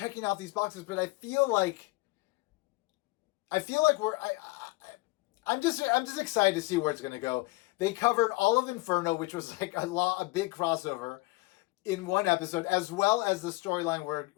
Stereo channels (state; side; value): quieter; right; 23.3 dB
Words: out these boxes, but I feel like I'm just excited to see where it's going to go. They covered all of Inferno, which was like a big crossover in one episode, as well as the storyline